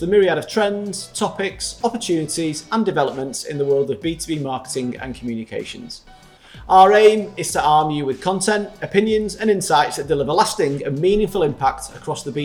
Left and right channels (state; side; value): identical; both; correlation 1.00